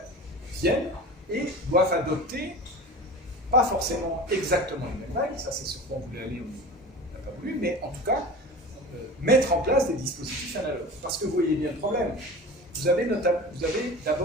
viennent et doivent adopter, pas forcément exactement les mêmes règles, ça c'est ce qu'on voulait aller, on n'a pas voulu, mais en tout cas, mettre en place des dispositifs analogues. Parce que vous voyez bien le problème. Vous avez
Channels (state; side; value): normal; both; correlation 0.35